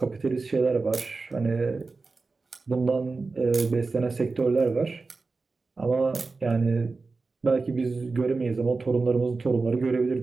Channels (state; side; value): quieter; left; 4.0 dB